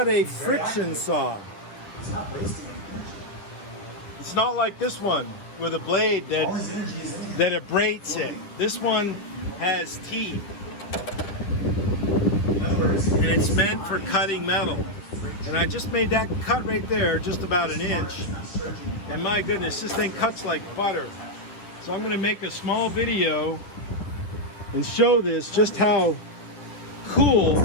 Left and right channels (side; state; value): right; late; 9.8 ms